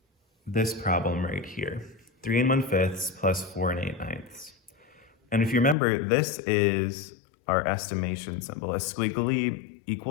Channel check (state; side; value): drops out; right; at 5.8 s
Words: this problem right here, 3 1/5 plus 4 8/9. And if you remember, this is our estimation symbol. A squiggly